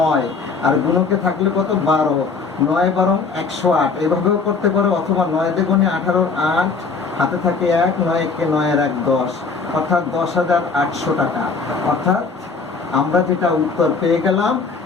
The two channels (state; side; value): quieter; right; 4.7 dB